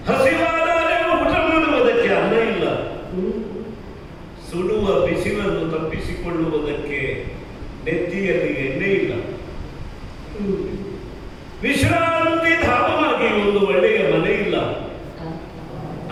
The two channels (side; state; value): both; identical; correlation 1.00